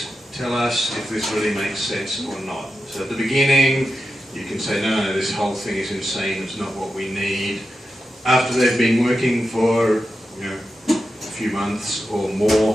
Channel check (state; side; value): normal; both; correlation 0.90